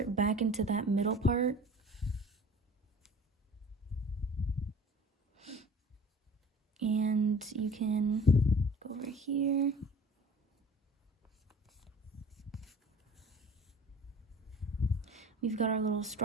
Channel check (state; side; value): normal; both; correlation 0.44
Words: back into that middle part. And you can go over here. We've got our little